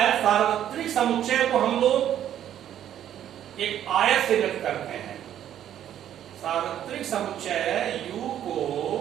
सार्वत्रिक समुच्चय को हम लोग एक आयत से व्यक्त करते हैं। सार्वत्रिक समुच्चय U को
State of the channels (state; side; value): quieter; left; 10.8 dB